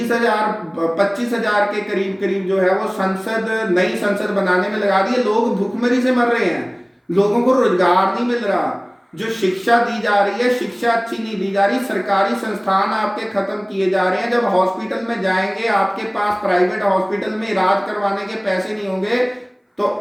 25,000 के करीब करीब जो है वो नई संसद बनाने में लगा दिए। लोग भूखमरी से मर रहे हैं, लोगों को रोजगार नहीं मिल रहा, जो शिक्षा दी जा रही है शिक्षा अच्छी नहीं दी जा रही, सरकारी संस्थान आपके खत्म किए जा रहे हैं। जब हॉस्पिटल में जाएंगे, आपके पास प्राइवेट हॉस्पिटल में इलाज करवाने के पैसे नहीं होंगे, तो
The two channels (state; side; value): identical; both; correlation 1.00